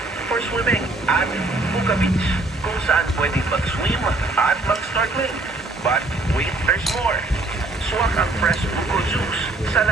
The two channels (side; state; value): left; quieter; 3.1 dB